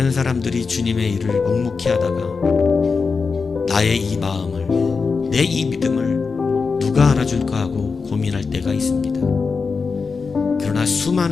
사람들이 주님의 일을 묵묵히 하다가 나의 이 마음을, 내 이 믿음을 누가 알아줄까 하고 고민할 때가 있습니다. 그러나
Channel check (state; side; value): quieter; right; 4.9 dB